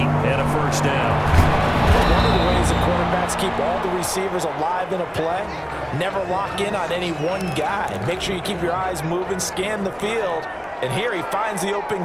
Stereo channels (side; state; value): both; identical; correlation 1.00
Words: and a first down. One of the ways that quarterbacks keep all the receivers alive in a play, never lock in on any one guy. Make sure you keep your eyes moving, scan the field, and here he finds the open